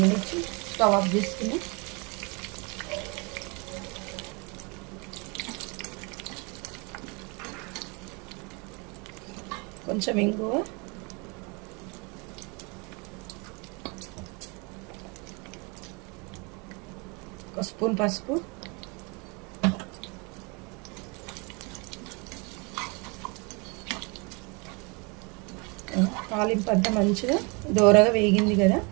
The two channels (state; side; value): quieter; left; 30.5 dB